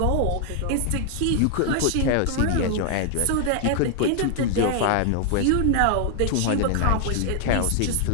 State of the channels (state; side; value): different; both; correlation 0.00